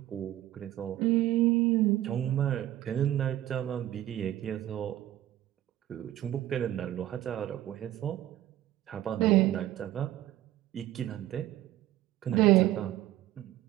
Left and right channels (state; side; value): quieter; left; 13.9 dB